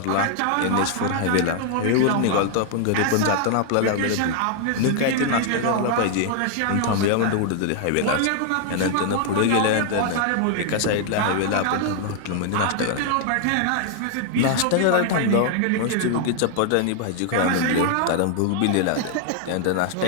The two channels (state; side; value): different; both; correlation 0.00